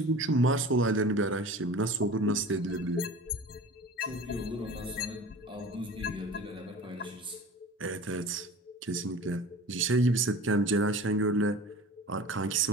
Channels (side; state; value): both; normal; correlation 0.38